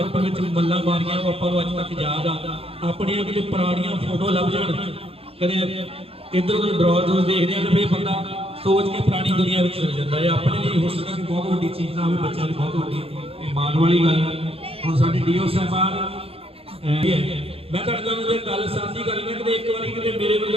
ਵਿੱਚ ਮੱਲਾਂ ਮਾਰੀਆਂ ਉਹ ਆਪਾਂ ਨੂੰ ਅੱਜ ਤੱਕ ਯਾਦ ਆ। ਆਪਣੀਆਂ ਕਿਤੇ ਪੁਰਾਣੀਆਂ ਫੋਟੋ ਲੱਭ ਜਾਣ, ਕਦੇ ਇੱਧਰ ਉੱਧਰ ਡਰਾਅ ਦੇਖਦੇ ਆ ਤੇ ਫਿਰ ਬੰਦਾ ਸੋਚ ਕੇ ਪੁਰਾਣੀ ਦੁਨੀਆ ਵਿੱਚ ਚਲ ਜਾਂਦਾ ਹੈ। ਆਪਣੇ ਲਈ ਹੋ ਸਕਦਾ ਕਿ ਬਹੁਤ ਵੱਡੀ ਚੀਜ਼ ਨਾ ਹੋਵੇ, ਬੱਚਿਆਂ ਲਈ ਬਹੁਤ ਵੱਡੀ ਇਹ ਮਾਣ ਵਾਲੀ ਗੱਲ ਹੈ। ਹੁਣ ਸਾਡੇ ਡੀਓ ਸਾਹਿਬਾਨ ਮੈਂ ਤੁਹਾਡੇ ਨਾਲ ਇਹ ਗੱਲ ਸਾਂਝੀ ਕਰ ਲੈਣਾ ਕਿ ਇੱਕ ਵਾਰੀ ਕਿਤੇ ਮੇਰੇ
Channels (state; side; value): late; left; 0.28 ms